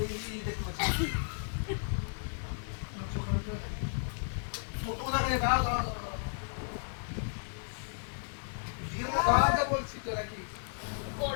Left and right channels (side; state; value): right; silent; digital silence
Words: দেখতে পাচ্ছ ছোট দেখে দাও দাও দিয়ে দাঁড়াতে বলছি তো নাকি